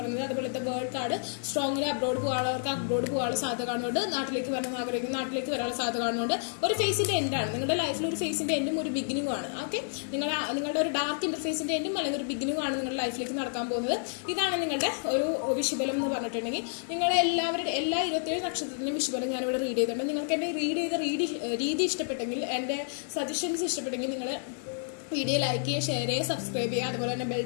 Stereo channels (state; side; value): silent; right; 58 dB below the other